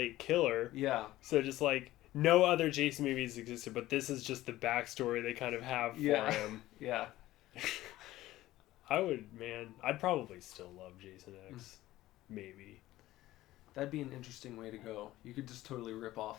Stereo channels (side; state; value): right; quieter; 16.0 dB